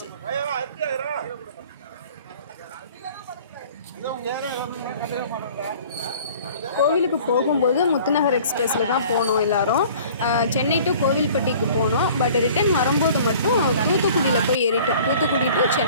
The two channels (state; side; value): inverted; both; correlation -0.49